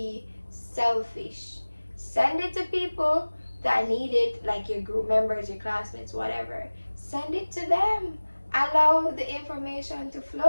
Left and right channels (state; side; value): inverted; both; correlation -1.00